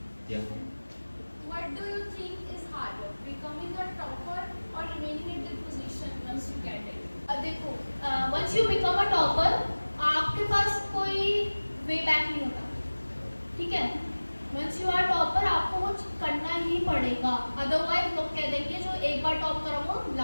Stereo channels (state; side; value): inverted; both; correlation -1.00